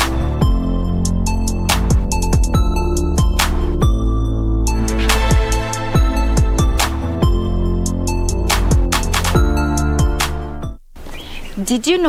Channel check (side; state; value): both; identical; correlation 1.00